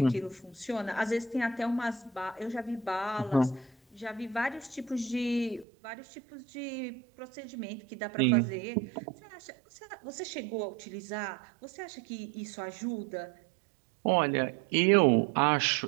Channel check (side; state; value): left; drops out; at 5.7 s